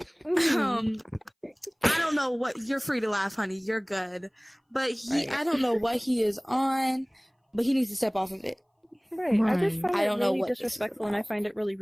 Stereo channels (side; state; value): both; identical; correlation 1.00